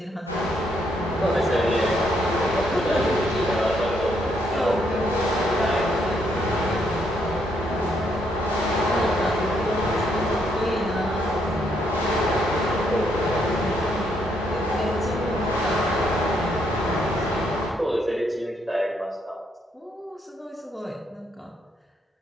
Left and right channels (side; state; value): both; normal; correlation 0.74